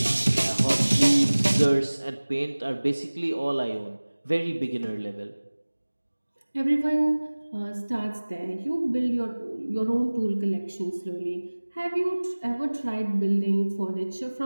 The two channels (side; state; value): both; inverted; correlation -1.00